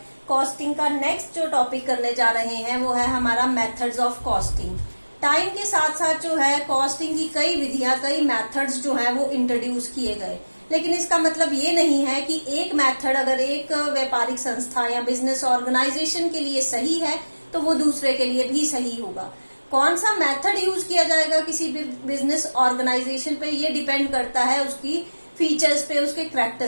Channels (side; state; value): both; inverted; correlation -1.00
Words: कॉस्टिंग का नेक्स्ट जो टॉपिक करने जा रहे हैं वो है हमारा मेथड्स ऑफ कॉस्टिंग। टाइम के साथ साथ जो है कॉस्टिंग की कई विधियां, कई मेथड्स जो है वो इंट्रोड्यूस किए गए, लेकिन इसका मतलब ये नहीं है कि एक मेथड अगर एक व्यापारिक संस्था या बिजनेस ऑर्गेनाइजेशन के लिए सही है तो वो दूसरे के लिए भी सही होगा। कौन सा मेथड यूज किया जाएगा किसी भी बिजनेस ऑर्गेनाइजेशन पे, ये डिपेंड करता है उसकी फीचर्स पे, उसके